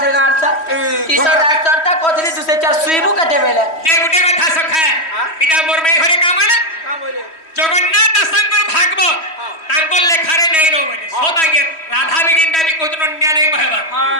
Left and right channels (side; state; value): right; late; 3.1 ms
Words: থেকে গাড়ছা কিসর ডাক্তারটা কতলি দুসে চার সুইবু কাটে বেলে যে গুটে কথা সখা এটা মোর মেয়ে ঘরে কাম না জগন্নাথ দাসঙ্কর ভাগবত তাঙ্কর লেখারে নাই নো বলে সদাগে রাধা বিগিনটা বি কোতন নিয়া নাই কহেবা